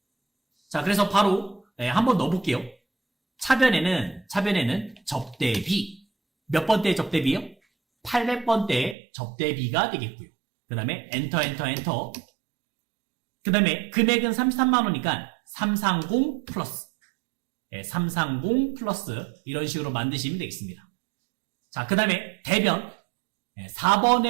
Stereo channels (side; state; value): left; drops out; at 9.0 s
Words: 자, 그래서 바로 한번 넣어볼게요. 차변에는 접대비. 몇 번째 접대비요? 800번대 접대비가 되겠고요. 그 다음에 엔터. 그 다음에 금액은 33만원이니까 330 플러스. 330 플러스 이런 식으로 만드시면 되겠습니다. 자, 그 다음에 대변.